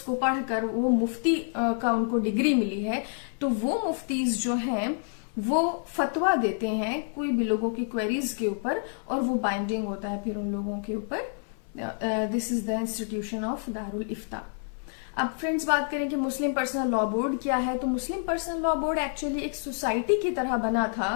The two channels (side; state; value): right; silent; 59 dB below the other